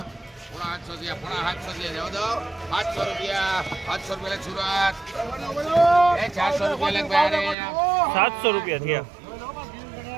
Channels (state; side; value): drops out; left; at 7.6 s